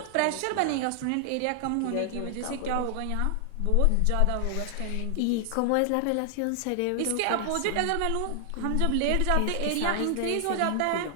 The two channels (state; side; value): different; both; correlation 0.00